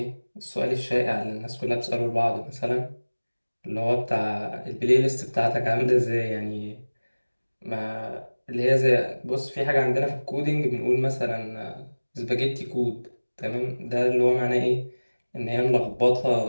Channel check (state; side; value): inverted; both; correlation -1.00